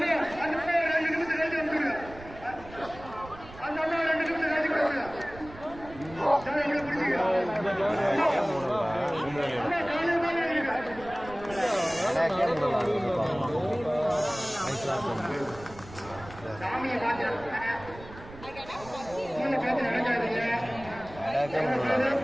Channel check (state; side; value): noise; right; rumble, 17 dB below the sound